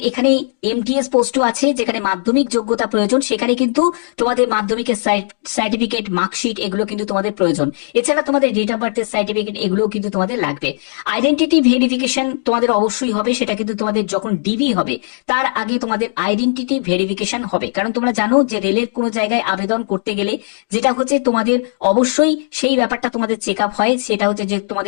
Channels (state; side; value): silent; right; digital silence